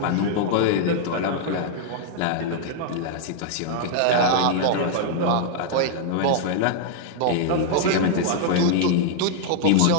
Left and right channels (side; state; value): both; different; correlation -0.01